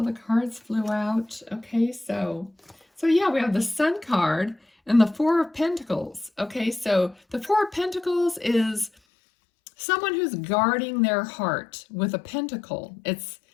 the cards flew out. Okay, so yeah, we have the Sun card and the 4 of Pentacles. Okay, so the 4 of Pentacles is someone who's guarding their heart with a pentacle. It's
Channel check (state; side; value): drops out; right; at 8.9 s